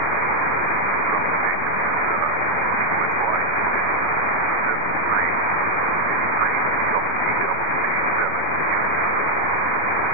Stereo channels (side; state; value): left; late; 5.9 ms